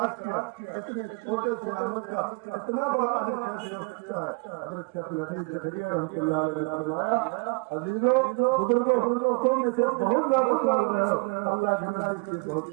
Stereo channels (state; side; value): quieter; left; 31.5 dB